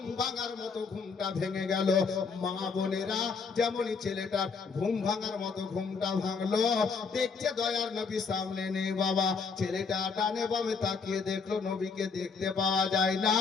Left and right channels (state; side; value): quieter; right; 5.2 dB